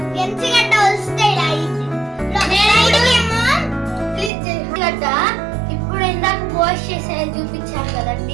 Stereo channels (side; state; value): left; drops out; at 4.3 s